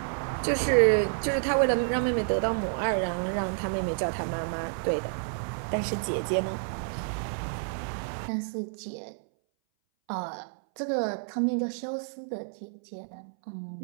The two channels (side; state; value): left; silent; 58 dB below the other